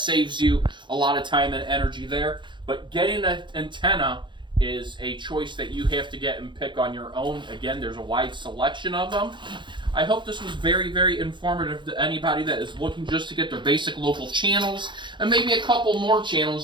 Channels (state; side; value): late; left; 0.23 ms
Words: you a lot of time and energy there. But getting an antenna is a choice that you have to get and pick on your own. Again, there's a wide selection of them. I hope this was very, very informative to anybody that is looking just to get their basic local channels, and maybe a couple more